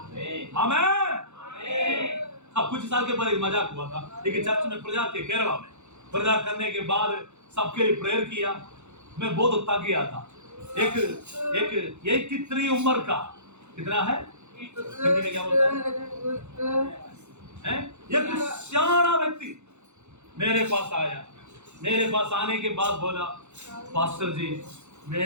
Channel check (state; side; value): late; left; 0.83 ms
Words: आमीन। अब कुछ साल के बाद एक मजाक हुआ था, लेकिन चर्च में प्रचार के केरला में प्रचार करने के बाद सबके लिए प्रेयर किया। मैं बहुत थक गया था। एक 83 उम्र का, कितना है हिंदी में क्या बोलते हैं, एक सियाना व्यक्ति मेरे पास आया। मेरे पास आने के बाद बोला, पास्टर जी